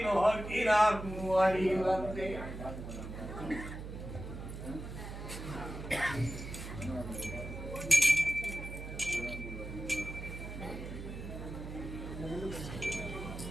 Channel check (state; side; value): noise; right; hum, 9 dB below the sound